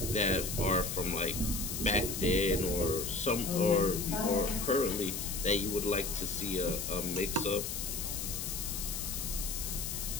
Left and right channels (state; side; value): noise; left; hiss, 4 dB below the sound